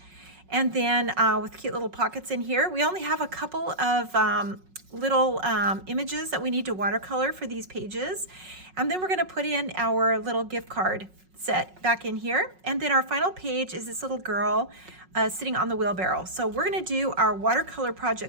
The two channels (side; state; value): left; late; 5.4 ms